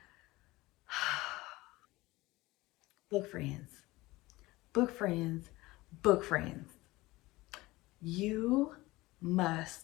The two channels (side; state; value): right; quieter; 20.0 dB